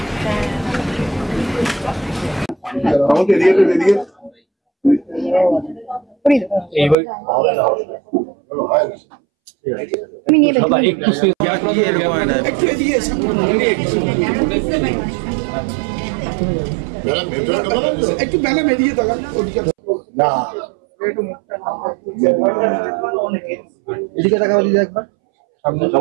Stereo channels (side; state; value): left; drops out; at 7.0 s